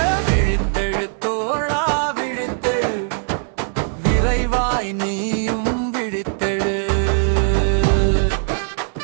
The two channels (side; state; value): left; silent; 66 dB below the other